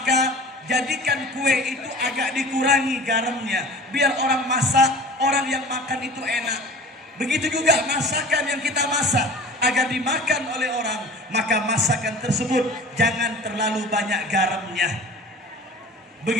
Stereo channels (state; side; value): normal; both; correlation 0.42